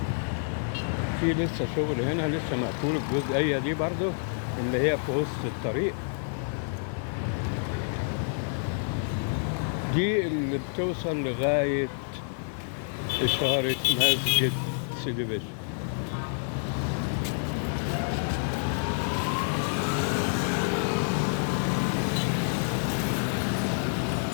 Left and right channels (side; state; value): right; silent; 59 dB below the other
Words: في لسه شغل هنا، لسه مقفول الجزئية دي برضو اللي هي في وسط الطريق دي اللي بتوصل لغاية إشارة مسجد سيدي بشر.